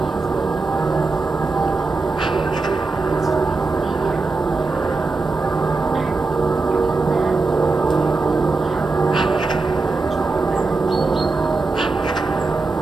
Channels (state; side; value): quieter; left; 3.7 dB